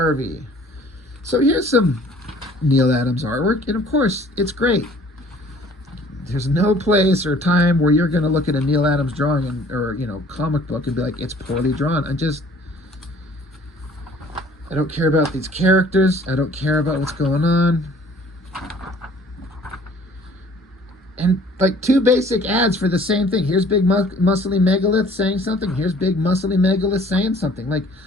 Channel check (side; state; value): both; normal; correlation 0.54